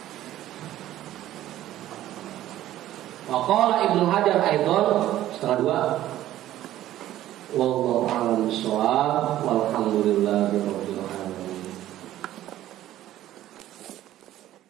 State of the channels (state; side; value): quieter; left; 13.6 dB